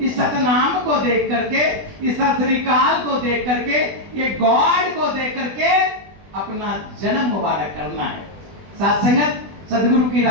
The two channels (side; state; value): left; late; 20 ms